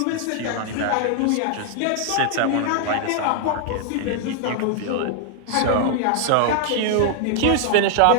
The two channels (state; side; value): different; both; correlation 0.00